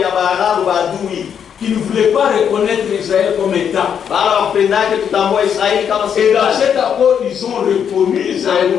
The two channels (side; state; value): right; quieter; 8.0 dB